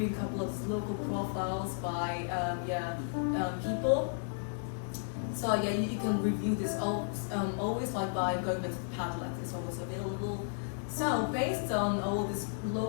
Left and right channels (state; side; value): silent; right; 55 dB below the other